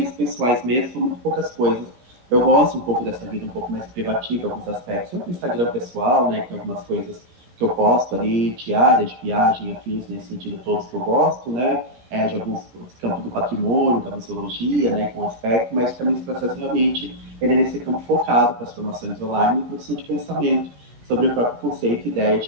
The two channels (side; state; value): left; late; 17 ms